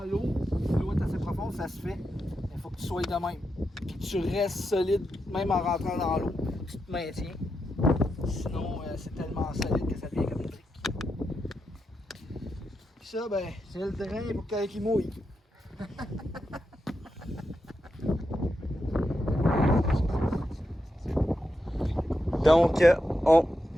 l'eau, si l'eau est assez profonde, ça se fait. Mais il faut que tu sois de même. Puis que tu restes solide, même en rentrant dans l'eau. Tu te maintiens. Sinon, c'est tellement solide que ça devient comme une brique. Puis ça, ben, c'est le drain pour qu'il mouille. Donc,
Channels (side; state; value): both; normal; correlation 0.86